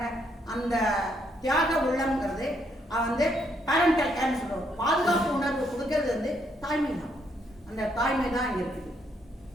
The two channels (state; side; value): normal; both; correlation 0.73